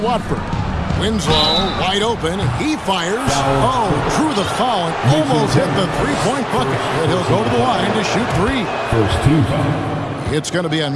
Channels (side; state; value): both; identical; correlation 1.00